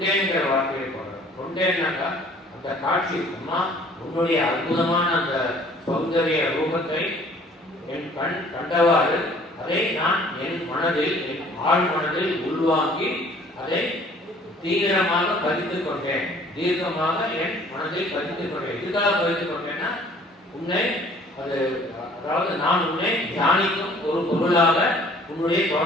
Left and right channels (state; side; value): normal; both; correlation 0.54